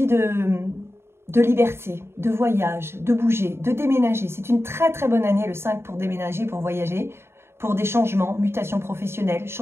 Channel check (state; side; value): late; left; 0.12 ms